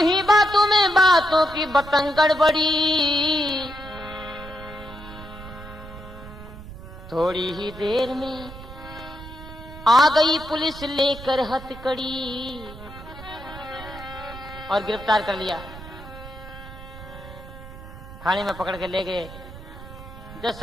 ही बातों में बातों की बतंगड़ बड़ी, थोड़ी ही देर में आ गई पुलिस लेकर हथकड़ी और गिरफ्तार कर लिया। थाने में पकड़ के ले गए, जज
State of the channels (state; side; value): noise; right; rumble, 15 dB below the sound